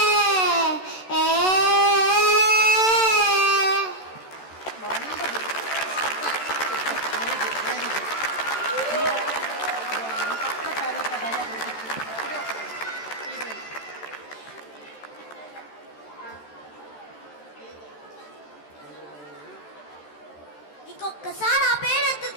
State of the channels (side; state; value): right; late; 13 ms